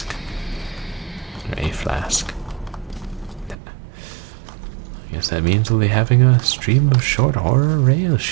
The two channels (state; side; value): drops out; left; at 3.6 s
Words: Or a flask. I guess that means we'll be having a stream of short horror rail